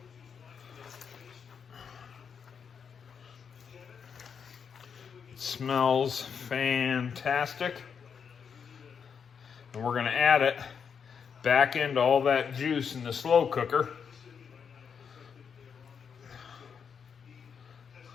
It smells fantastic. And we're going to add it back into all that juice in the slow cooker.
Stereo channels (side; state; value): right; quieter; 6.7 dB